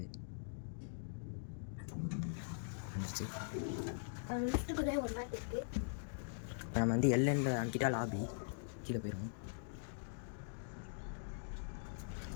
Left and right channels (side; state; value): right; silent; digital silence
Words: இப்போ நம்ம வந்து எல்என்ல அனுப்பிட்டா லாபி கீழே போயிடும்.